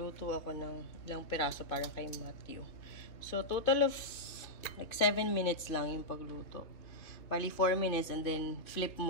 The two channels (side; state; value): right; late; 2.7 ms